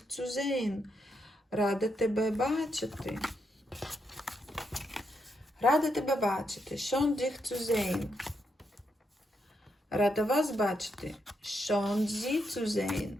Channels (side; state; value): both; normal; correlation 0.81